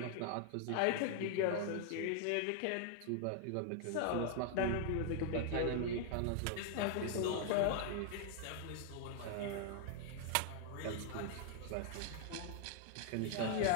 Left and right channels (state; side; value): different; both; correlation 0.00